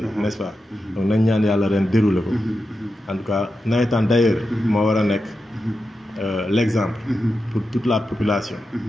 n'est-ce pas donc nañ ñaan yàlla ren dérouler ko en tout cas nawetaan d'ailleurs moo war a nekk l'exemple pour toute la population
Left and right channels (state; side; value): normal; both; correlation 0.89